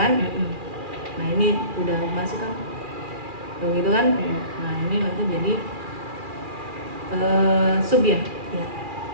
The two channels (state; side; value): late; left; 2.4 ms